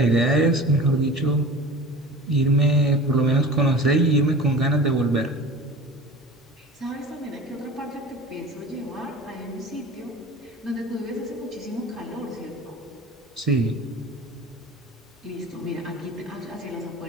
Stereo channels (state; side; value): normal; both; correlation 0.37